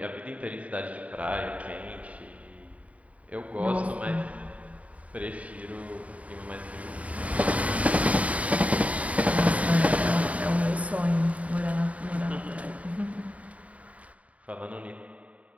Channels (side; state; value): left; late; 0.068 ms